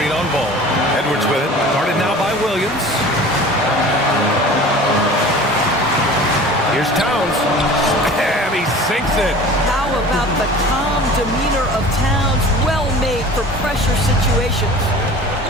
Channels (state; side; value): normal; both; correlation 0.41